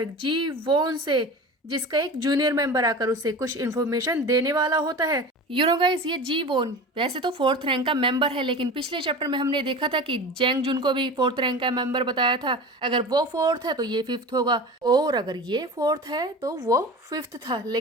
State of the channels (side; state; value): both; normal; correlation 0.33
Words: जी वोन से, जिसका एक जूनियर मेंबर आकर उसे कुछ इन्फॉर्मेशन देने वाला होता है। यू नो गाइस, ये जी वोन वैसे तो 4th रैंक का मेंबर है, लेकिन पिछले चैप्टर में हमने देखा था कि जेंग जुन को भी 4th रैंक का मेंबर बताया था। अगर वो 4th है तो ये 5th होगा, और अगर ये 4th है तो वो 5th था,